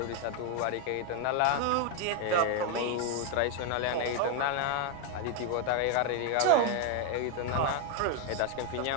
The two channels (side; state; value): both; different; correlation 0.01